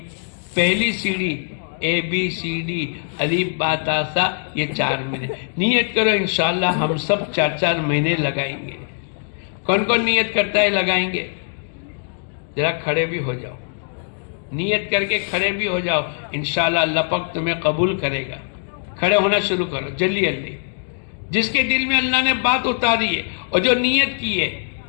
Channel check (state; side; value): silent; right; digital silence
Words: پہلی سیڑھی ABCD الف با تا سا، یہ 4 مہینے. نیت کرو انشاءاللہ ہم سب 4 مہینے لگائیں گے. کون کون نیت کرتا ہے لگائیں گے؟ ذرا کھڑے بھی ہو جاؤ، نیت کر کے کھڑے بھی ہو جاؤ. انشاءاللہ اللہ پاک تمہیں قبول کرے گا. کھڑے ہونا شروع کرو جلدی جلدی. جس کے دل میں اللہ نے بات اتاری ہے اور جو نیت کی ہے